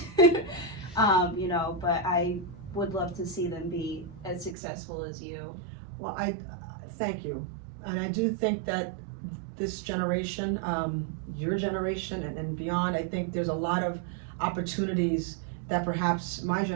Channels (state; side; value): drops out; left; at 4.5 s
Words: You know, but I would love to see them be as successful as you. Well, I thank you. And I do think that this generation, your generation and beyond, I think there's a lot of opportunities that perhaps my